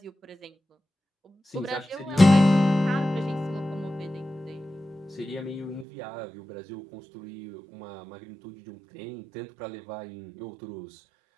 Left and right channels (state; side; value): drops out; left; at 5.9 s